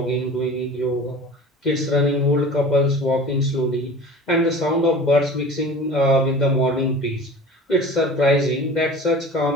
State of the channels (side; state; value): both; normal; correlation 0.39